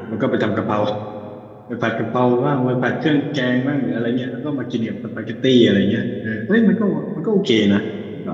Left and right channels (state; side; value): identical; both; correlation 1.00